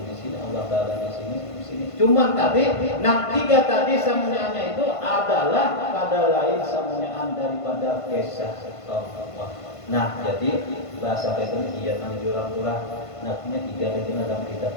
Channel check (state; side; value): late; right; 1.5 ms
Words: di sini, Allah Taala di sini. Cuman tadi, tiga tadi samunyanya itu adalah pada lain samunyaan daripada kisah Allah. Nah, jadi bahasa itu iya nang jurang-jurang. Nantinya tiga itu dalam kita